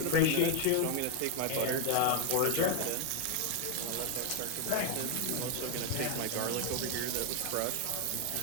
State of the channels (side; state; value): both; different; correlation 0.00